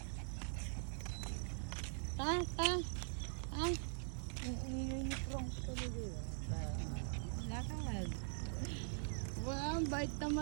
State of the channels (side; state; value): left; silent; digital silence